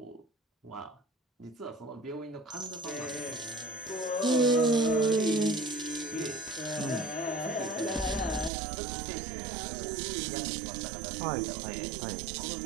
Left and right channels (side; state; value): left; drops out; at 8.5 s